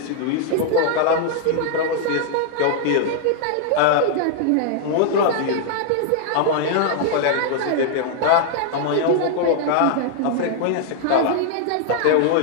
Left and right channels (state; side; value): different; both; correlation 0.00